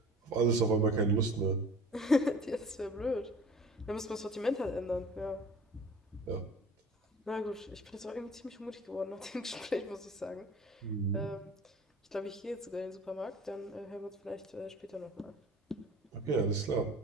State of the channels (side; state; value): both; normal; correlation 0.44